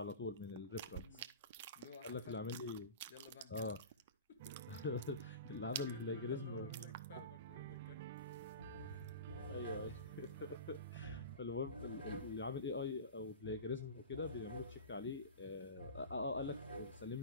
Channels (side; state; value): both; inverted; correlation -0.32